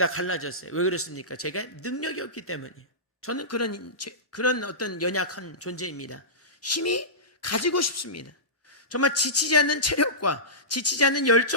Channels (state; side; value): normal; both; correlation -0.18